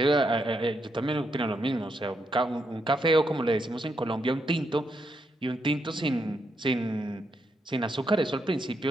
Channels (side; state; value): both; normal; correlation 0.80